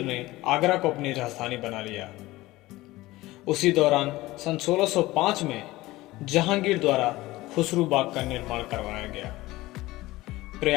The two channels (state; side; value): quieter; right; 18.6 dB